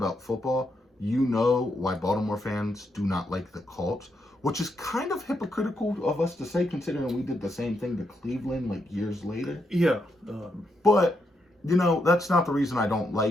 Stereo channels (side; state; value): both; normal; correlation 0.80